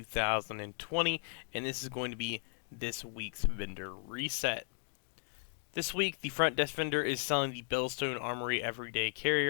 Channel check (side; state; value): right; silent; 54 dB below the other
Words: and this is going to be this week's vendor reset. This week, the front desk vendor is selling the Bellstone Armory Everyday